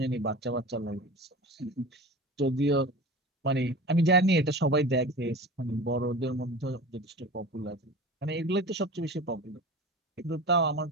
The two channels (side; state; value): both; normal; correlation 0.35